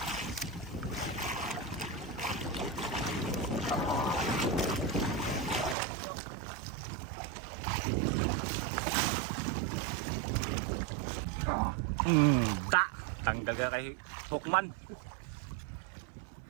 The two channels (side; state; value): left; drops out; at 5.8 s